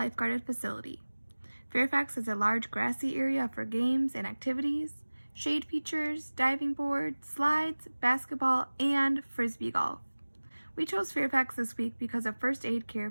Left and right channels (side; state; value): both; inverted; correlation -1.00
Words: facility. Fairfax has a large grassy area for games and activities, shade features, diving board, slides, basketball, and frisbee golf. We chose Fairfax this week because of first aid care